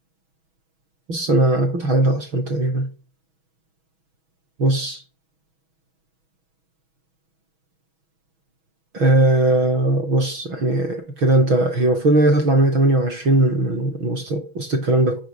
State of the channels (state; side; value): late; left; 6.2 ms